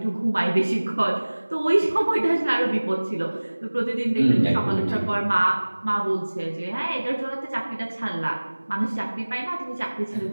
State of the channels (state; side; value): inverted; both; correlation -1.00